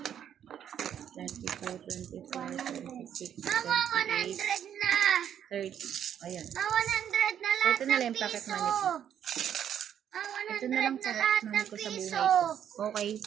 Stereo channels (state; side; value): quieter; left; 9.5 dB